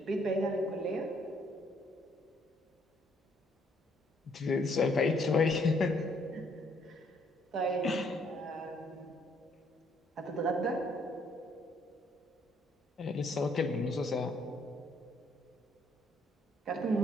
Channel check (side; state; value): both; normal; correlation 0.67